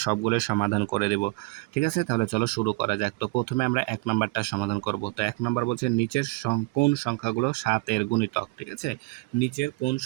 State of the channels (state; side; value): quieter; left; 24.4 dB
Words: সবগুলোর সমাধান করে দেব। ঠিক আছে, তাহলে চলো শুরু করা যাক। তো প্রথমে আমরা 1 নাম্বারটা সমাধান করব। তো 1 নাম্বার বলছে নিচের কোন সংখ্যাগুলো 7 এর গুণিতক। ঠিক আছে, নিচের কোন